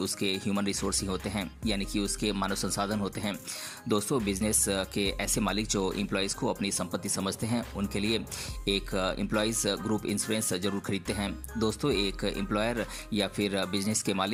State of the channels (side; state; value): both; identical; correlation 1.00